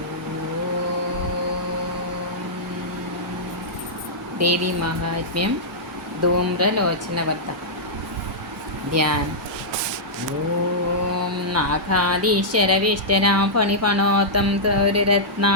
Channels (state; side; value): normal; both; correlation -0.11